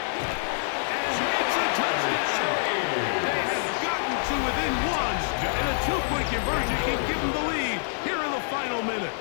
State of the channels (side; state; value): right; silent; digital silence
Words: And it's a touchdown. They have gotten to within one, and a two-point conversion can give them the lead here in the final minute.